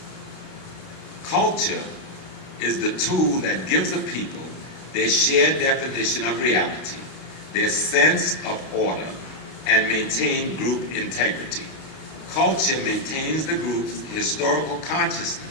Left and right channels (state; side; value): late; right; 32 ms